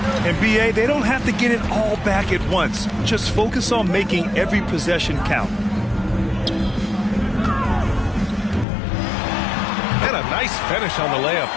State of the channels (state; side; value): drops out; right; at 8.7 s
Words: And BA, they don't have to get it all back at once. Just focus on making every possession count. And a nice finish on the layup.